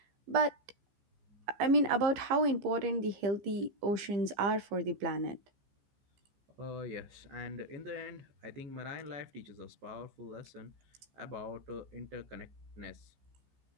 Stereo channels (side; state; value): left; late; 15 ms